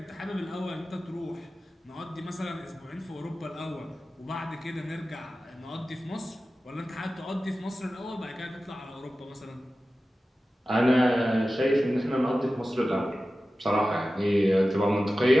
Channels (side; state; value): both; normal; correlation 0.94